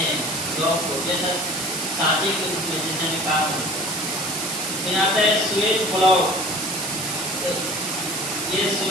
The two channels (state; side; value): noise; right; hiss, 3 dB below the sound